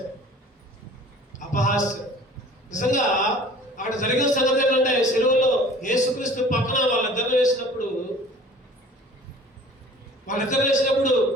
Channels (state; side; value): normal; both; correlation 0.47